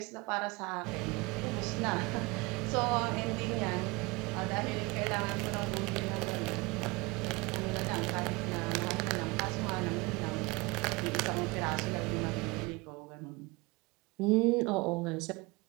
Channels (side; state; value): left; quieter; 24.8 dB